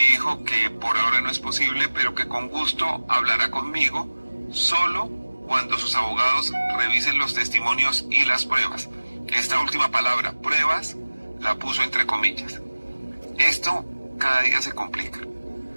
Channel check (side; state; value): both; inverted; correlation -1.00